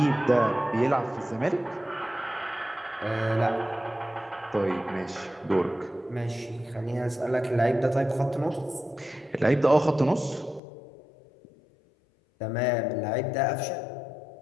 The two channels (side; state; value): right; drops out; at 10.6 s